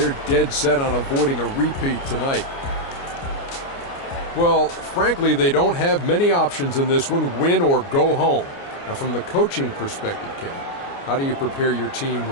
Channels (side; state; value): right; late; 29 ms